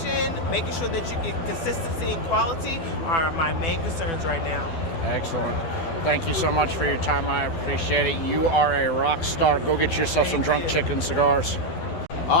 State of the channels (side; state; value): right; late; 12 ms